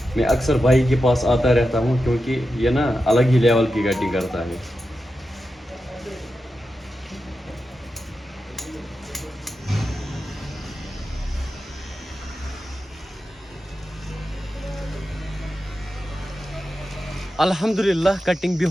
मैं अक्सर भाई के पास आता रहता हूँ, क्योंकि ये ना अलग ही लेवल की कटिंग करता है। अल्हम्दुलिल्लाह कटिंग भी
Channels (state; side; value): normal; both; correlation 0.90